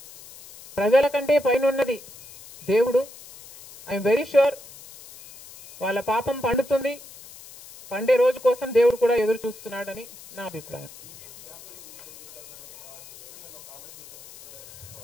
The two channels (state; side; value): noise; left; hiss, 19 dB below the sound